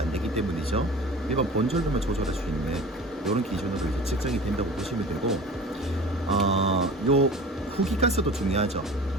되기 때문이죠. 일반 본전류만 조절할 수 있는 이런 기준으로 이제 측정이 된다고 보시면 되고, 요 후기가스도 중요하죠.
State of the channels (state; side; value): normal; both; correlation 0.39